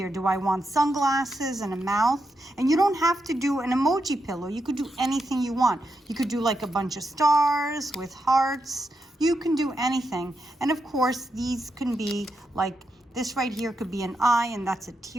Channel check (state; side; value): normal; both; correlation 0.85